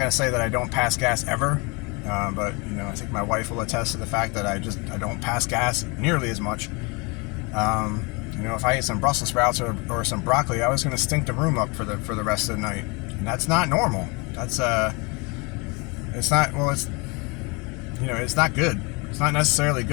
to say that I don't pass gas ever, but I think my wife will attest to the fact that I don't pass gas nearly as much. If I ate some Brussels sprouts or some broccoli, I was going to stink the room up for the rest of the night, and that's not normal. That's it's not it's not good. It's not necessarily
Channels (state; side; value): quieter; right; 29.2 dB